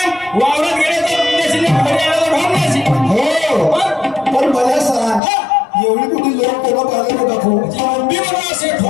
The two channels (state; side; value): drops out; right; at 5.2 s